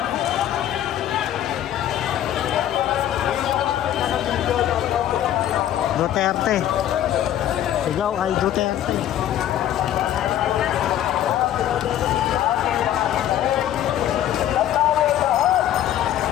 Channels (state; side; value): quieter; right; 11.7 dB